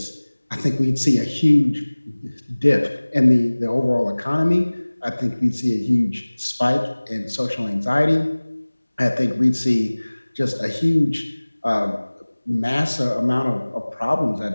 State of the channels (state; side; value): inverted; both; correlation -1.00